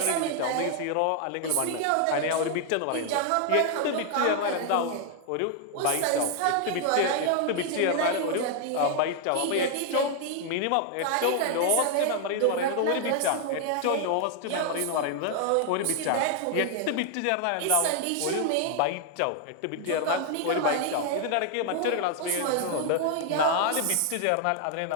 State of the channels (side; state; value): both; different; correlation 0.00